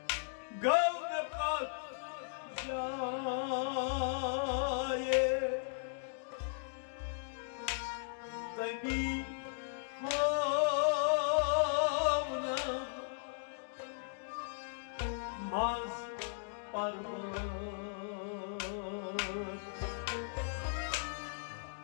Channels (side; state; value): right; silent; digital silence